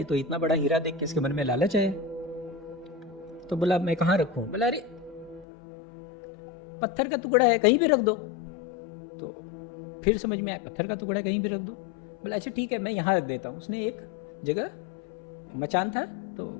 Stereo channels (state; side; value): drops out; right; at 5.5 s